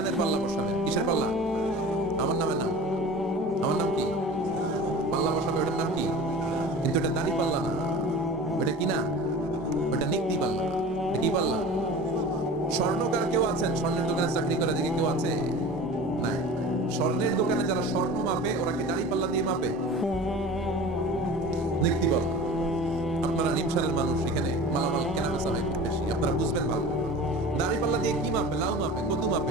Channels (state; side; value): normal; both; correlation 0.37